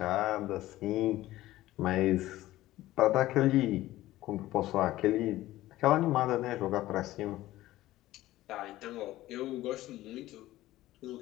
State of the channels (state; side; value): quieter; right; 15.9 dB